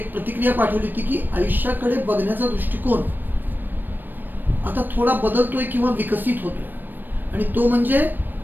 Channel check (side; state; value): left; late; 0.092 ms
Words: प्रतिक्रिया पाठवली होती की आयुष्याकडे बघण्याचा दृष्टिकोन आता थोडा बदलतोय किंवा विकसित होतोय, आणि तो म्हणजे